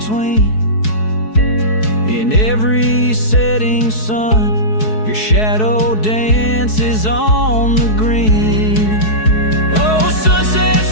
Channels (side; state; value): right; late; 4.7 ms